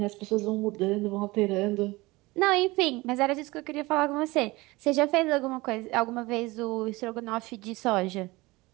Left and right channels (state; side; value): quieter; left; 21.9 dB